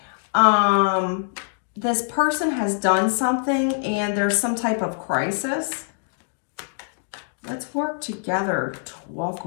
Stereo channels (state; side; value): silent; right; digital silence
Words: This person has done something and there's some type of crisis. Let's work together to walk